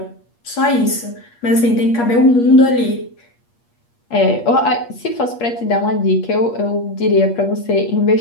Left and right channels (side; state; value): right; late; 8.5 ms